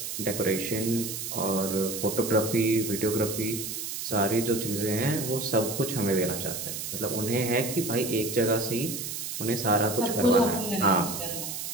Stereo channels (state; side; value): noise; right; hiss, 5 dB below the sound